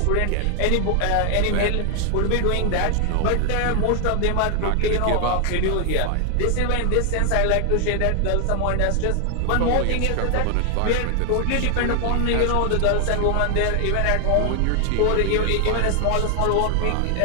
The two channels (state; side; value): different; both; correlation 0.00